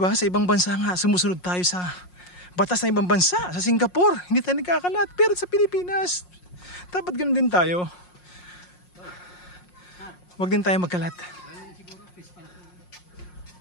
Sa ibang bansa nga, sumusunod tayo sa batas ng ibang bansa. Sa Singapore, hindi tayo nagkakalat. Pero sa Pilipinas, dapat ganun din tayo. Huwag din tayo magkalat.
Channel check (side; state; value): right; late; 5.6 ms